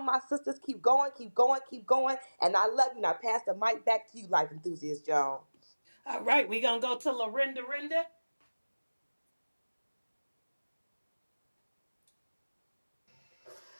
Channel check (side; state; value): both; inverted; correlation -1.00